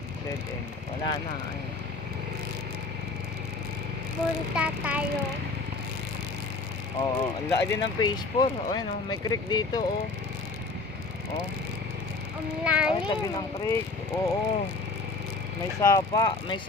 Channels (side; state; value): right; quieter; 3.7 dB